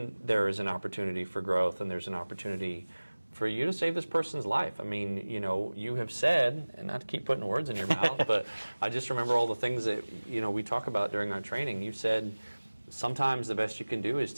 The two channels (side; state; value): both; inverted; correlation -1.00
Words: there is an opportunity for growth and there's an opportunity for you to save this person's life. I mean, you have said, and not to keep putting words in your mouth, but I just remember all the things that, we talk about during our training. You said sometimes the best you can do is